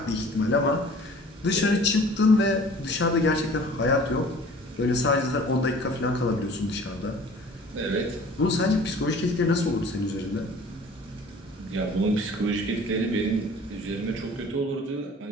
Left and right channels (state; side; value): normal; both; correlation 0.48